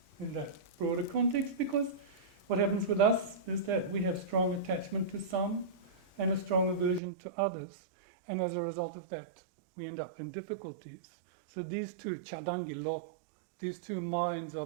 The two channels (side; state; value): left; drops out; at 7.0 s